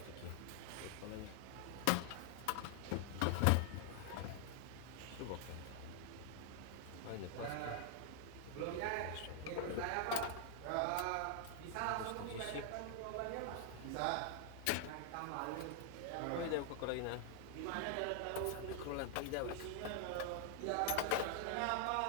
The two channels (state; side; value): different; both; correlation 0.00